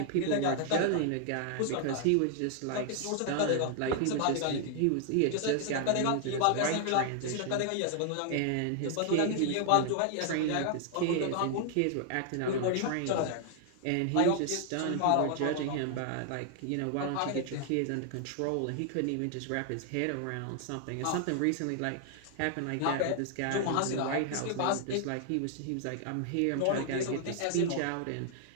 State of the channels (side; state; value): both; different; correlation 0.00